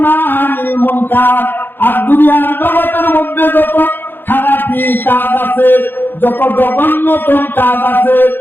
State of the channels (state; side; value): late; right; 0.099 ms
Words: আনিল মুনকার, আর দুনিয়ার জগতের মধ্যে যত খারাপি কাজ আছে, যত জঘন্যতম কাজ আছে,